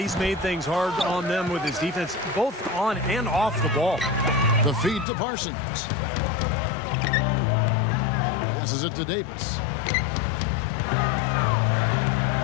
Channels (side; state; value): right; drops out; at 5.1 s